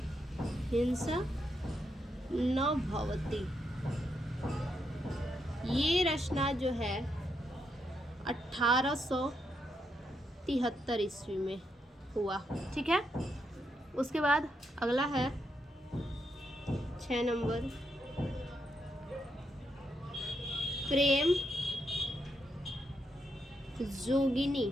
हिंसा न भवति। ये रचना जो है 1873 ईस्वी में हुआ, ठीक है। उसके बाद अगला है 6 नंबर प्रेम जोगिनी,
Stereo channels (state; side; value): normal; both; correlation 0.81